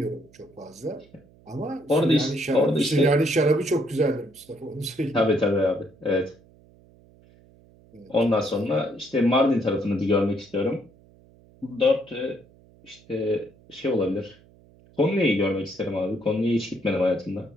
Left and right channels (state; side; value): noise; right; hum, 27 dB below the sound